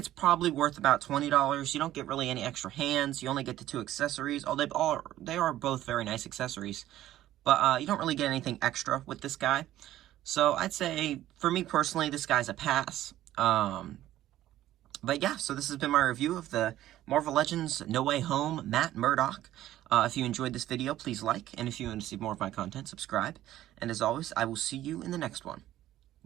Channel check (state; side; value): quieter; left; 13.7 dB